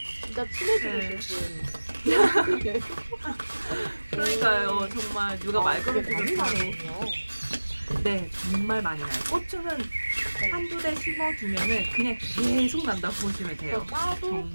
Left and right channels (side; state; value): both; inverted; correlation -1.00